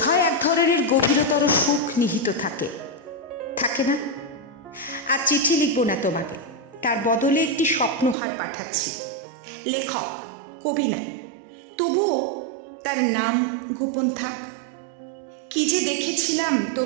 এক ধরনের গভীরতর সুখ নিহিত থাকে না? আর চিঠি লিখব না তোমাকে, তার বদলে একটি স্বপ্নহার পাঠাচ্ছি। লেখক, কবি না, তবুও তার নাম গোপন থাক। কি যে দেখেছিলাম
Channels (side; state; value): left; drops out; at 8.2 s